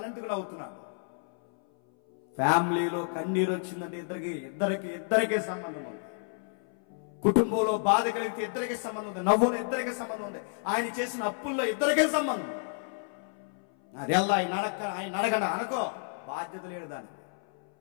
నవ్వుతున్నాడు? ఫ్యామిలీలో కన్నీరు వచ్చిందంటే ఇద్దరికి సంబంధం ఉంది. కుటుంబంలో బాధ కలిగితే ఇద్దరికి సంబంధం ఉంది. నవ్వులో ఇద్దరికి సంబంధం ఉంది. ఆయన చేసిన అప్పుల్లో ఇద్దరికే సంబంధం ఉంది. అది ఎలా ఆయన అడగండి అనుకో, బాధ్యత లేడు దానికి.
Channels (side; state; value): right; silent; 58 dB below the other